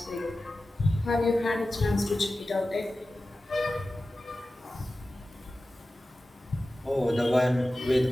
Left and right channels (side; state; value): both; normal; correlation 0.95